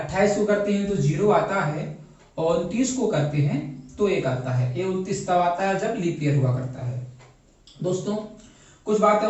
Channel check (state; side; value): identical; both; correlation 1.00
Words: को करते हैं तो 0 आता है और 29 को करते हैं तो 1 आता है। ये 29 तब आता है जब लीप ईयर हुआ करता है। दोस्तों कुछ बातें